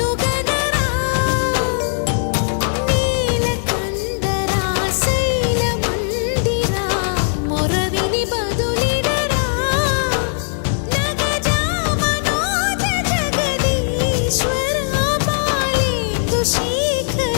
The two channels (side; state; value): right; silent; digital silence